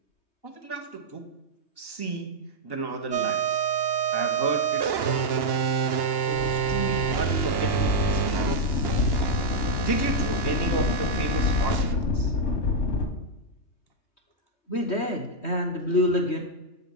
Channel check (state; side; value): late; right; 2.9 ms